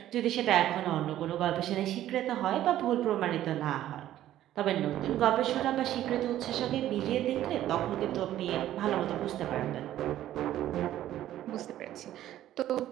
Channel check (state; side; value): quieter; left; 12.9 dB